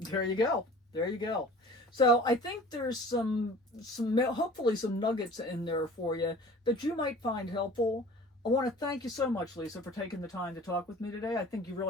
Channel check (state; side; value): normal; both; correlation 0.45